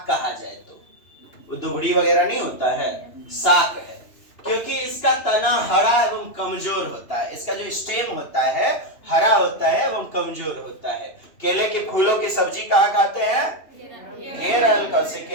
कहा जाए तो, वो दुबड़ी वगैरह नहीं होता है, साग है, क्योंकि इसका तना हरा एवं कमजोर होता है। इसका जो स्टेम होता है हरा होता है एवं कमजोर होता है। केले के फूलों की सब्जी कहाँ खाते हैं? केरल। कौसे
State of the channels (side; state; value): right; late; 2.9 ms